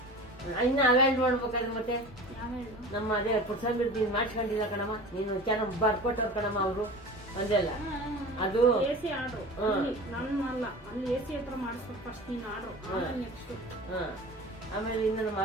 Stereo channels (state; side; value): normal; both; correlation 0.37